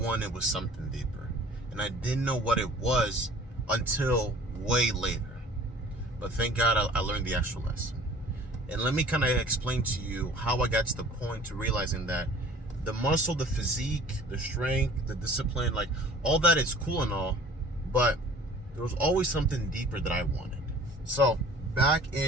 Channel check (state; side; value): normal; both; correlation 0.48